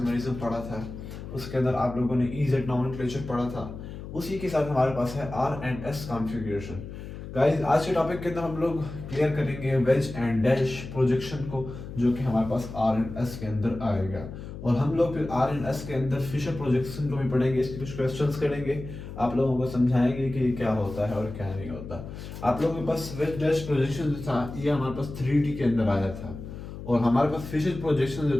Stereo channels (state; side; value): noise; left; hum, 11 dB below the sound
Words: पढ़ा था, उसके अंदर आप लोगों ने ईजेड नॉमेनक्लेचर पढ़ा था। उसी के साथ हमारे पास है R and S configuration. Guys, आज के टॉपिक के अंदर हम लोग क्लियर करेंगे वेज एंड डैश प्रोजेक्शन को, जो कि हमारे पास आर एंड एस के अंदर आएगा। और हम लोग फिर आर एंड एस के अंदर फिशर प्रोजेक्शन को भी पढ़ेंगे, इसके कुछ क्वेश्चंस करेंगे, आप लोगों को समझाएंगे कि क्या होता है और क्या नहीं होता। आप लोगों के पास वेज डैश प्रोजेक्शन जो था ये हमारे पास 3D के अंदर आया था, और हमारे पास फिशर प्रोजेक्शन